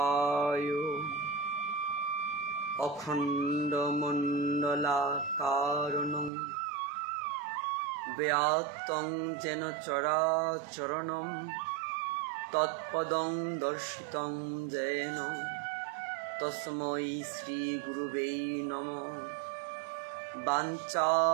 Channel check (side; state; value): left; drops out; at 6.3 s